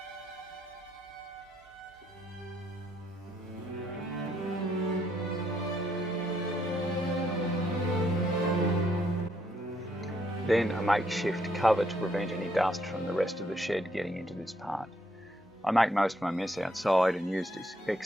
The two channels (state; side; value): normal; both; correlation 0.73